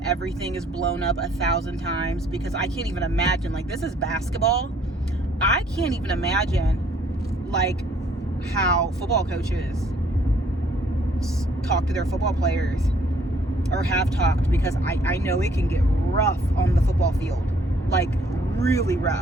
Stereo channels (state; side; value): normal; both; correlation 0.62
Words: everything is blown up 1,000 times, because I can't even imagine, this is basketball. I can't even imagine, how football coaches talk to their football players, or have talked, because I know it can get rough on the football field, really